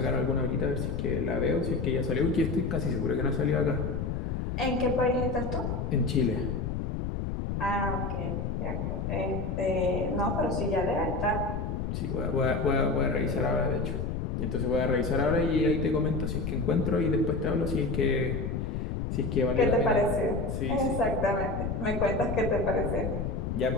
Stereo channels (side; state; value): left; noise; rumble, 2 dB below the sound